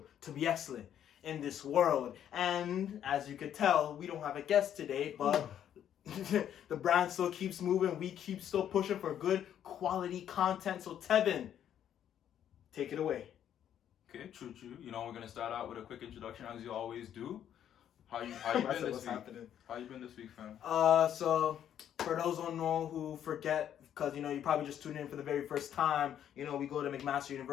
to be excellent in this world. And as you could tell, we don't have a guest today, but the brand still keeps moving. We keep still pushing for good quality content. So Tevin, take it away. Okay, true. You know, we're gonna start out with a quick introduction as you always do. How you been this week? Happening? How you been this week, fam? So for those who don't know, who forget, because you know you probably just tuned in for the very first time. You know, we go to McMaster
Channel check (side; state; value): right; quieter; 10.0 dB